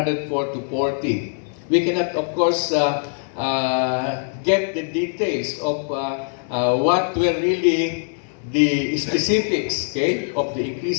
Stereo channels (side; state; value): right; silent; 64 dB below the other